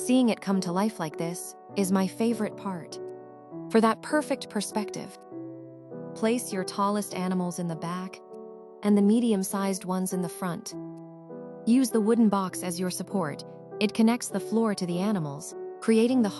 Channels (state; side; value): identical; both; correlation 1.00